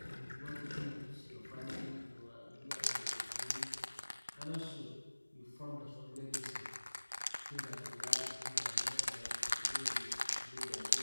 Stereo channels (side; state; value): both; inverted; correlation -1.00